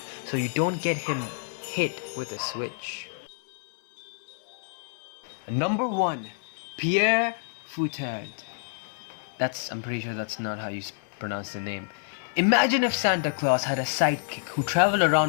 so you don't get him hit with a switch. Number 1. Pierre Fouettard. I'm pretty sure that's not how you pronounce the name. Imagine if Santa Claus had a sidekick who traveled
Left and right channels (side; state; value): right; silent; 59 dB below the other